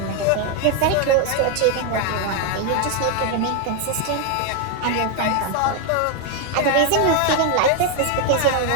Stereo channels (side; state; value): both; different; correlation 0.01